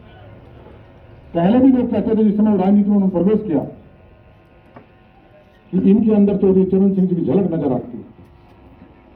पहले भी लोग कहते थे जिस समय राजनीति में उन्होंने प्रवेश किया कि इनके अंदर चौधरी चरण सिंह जी की झलक नजर आती है।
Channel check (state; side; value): identical; both; correlation 1.00